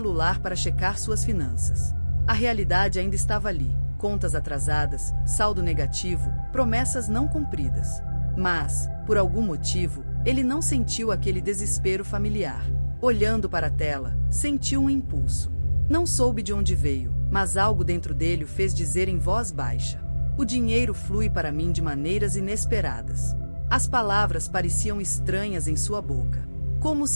para checar suas finanças. A realidade ainda estava ali. Contas atrasadas, saldo negativo, promessas não cumpridas. Mas, por algum motivo, ele não sentiu aquele desespero familiar. Olhando para a tela, sentiu um impulso. Não soube de onde veio, mas algo dentro dele o fez dizer em voz baixa: "O dinheiro flui para mim de maneiras inesperadas." As palavras pareciam estranhas em sua boca, como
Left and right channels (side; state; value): both; inverted; correlation -1.00